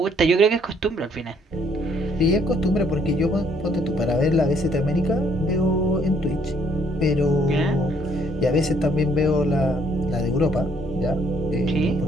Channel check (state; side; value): normal; both; correlation 0.66